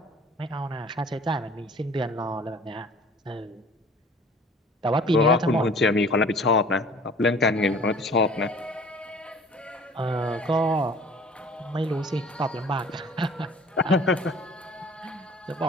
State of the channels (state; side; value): normal; both; correlation 0.48